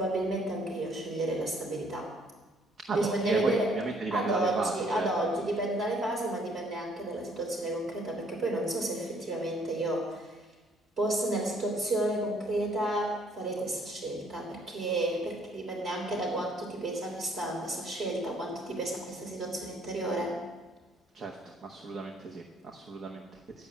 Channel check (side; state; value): both; normal; correlation 0.63